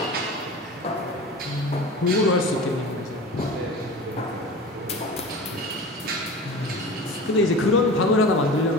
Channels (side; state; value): both; normal; correlation 0.34